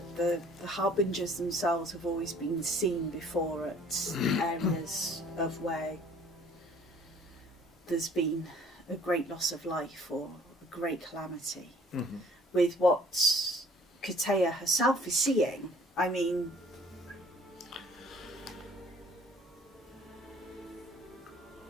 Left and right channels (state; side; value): normal; both; correlation 0.55